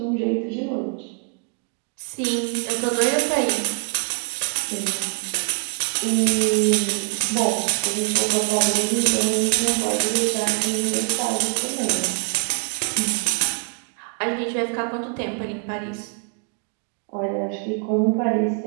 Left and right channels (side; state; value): left; quieter; 39.1 dB